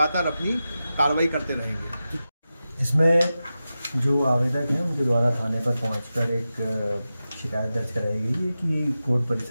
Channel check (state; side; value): inverted; both; correlation -0.93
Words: अपनी कार्रवाई करते रहेंगे। इसमें जो आवेदक हैं उनके द्वारा थाने पर पहुंचकर एक शिकायत दर्ज कराई गई है कि कोर्ट